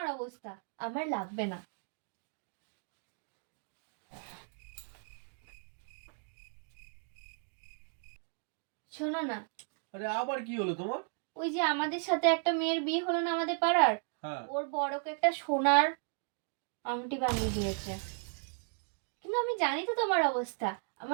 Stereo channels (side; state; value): left; silent; 54 dB below the other